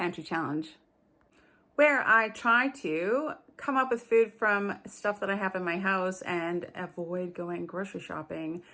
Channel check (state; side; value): identical; both; correlation 1.00